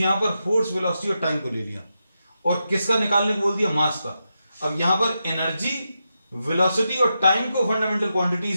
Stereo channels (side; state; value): both; inverted; correlation -0.87